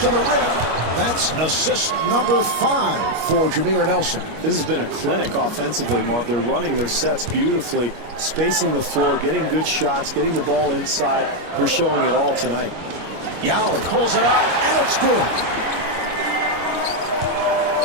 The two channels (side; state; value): left; late; 25 ms